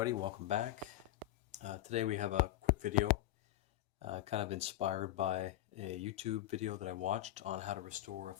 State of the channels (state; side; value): quieter; right; 14.6 dB